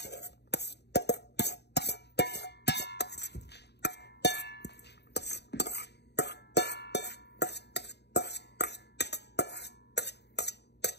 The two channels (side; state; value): right; late; 0.49 ms